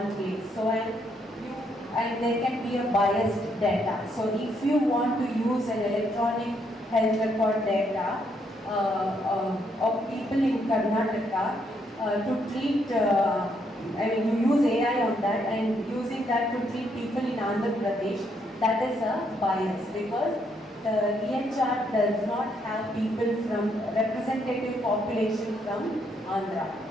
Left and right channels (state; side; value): normal; both; correlation 0.74